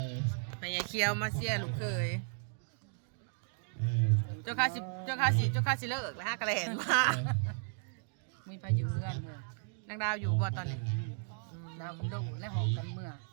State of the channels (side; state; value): left; silent; 54 dB below the other